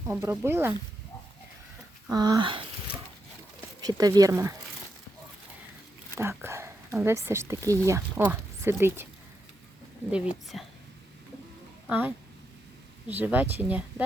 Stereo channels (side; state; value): both; normal; correlation 0.84